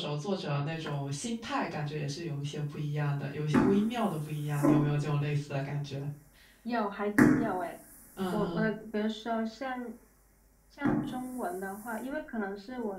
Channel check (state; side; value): identical; both; correlation 1.00